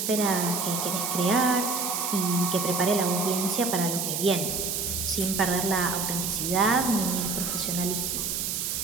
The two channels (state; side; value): noise; right; hiss, 1 dB below the sound